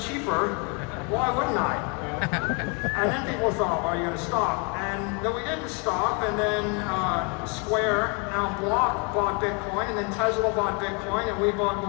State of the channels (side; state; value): right; quieter; 34.2 dB